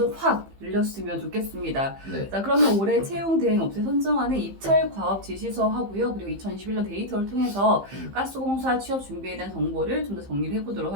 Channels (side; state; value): left; late; 15 ms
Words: 확 늘렸으면 좋겠습니다. 네. 자, 그러면 올해 채용 대행 업체 선정하는 입찰 과업 지시서 하고요. 그리고 2021년 데이터를 통해서 가스공사 취업 준비에 대한 정보를 좀 더 정리를 해보도록